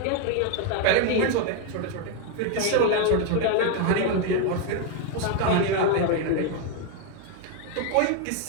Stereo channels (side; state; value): both; different; correlation 0.01